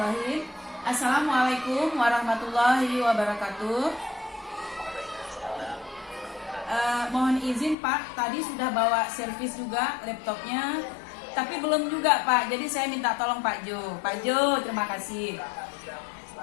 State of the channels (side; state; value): right; drops out; at 7.8 s